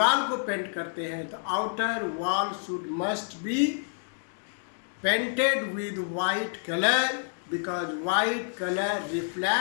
को पेंट करते हैं तो outer wall should must be painted with white colour, because white colour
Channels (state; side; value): silent; right; digital silence